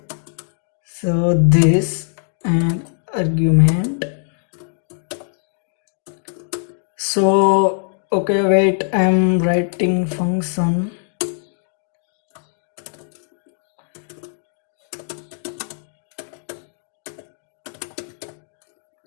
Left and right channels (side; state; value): right; silent; digital silence